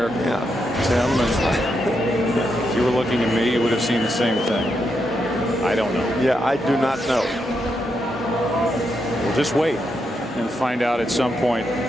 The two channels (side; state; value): both; normal; correlation 0.82